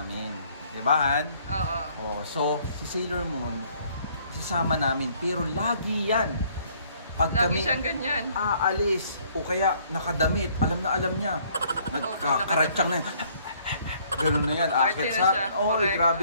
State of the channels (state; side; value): inverted; both; correlation -0.62